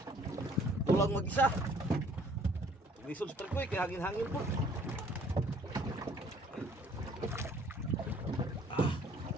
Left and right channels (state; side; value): normal; both; correlation 0.58